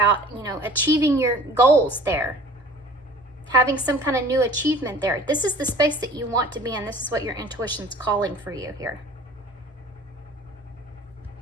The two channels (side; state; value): both; normal; correlation 0.47